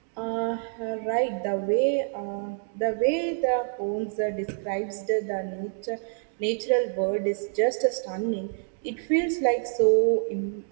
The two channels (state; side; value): silent; left; 60 dB below the other